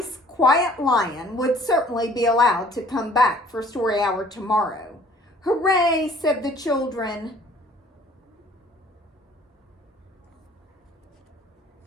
quiet lion would certainly be allowed to come back for story hour tomorrow." "Hooray," said the children.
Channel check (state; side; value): normal; both; correlation 0.55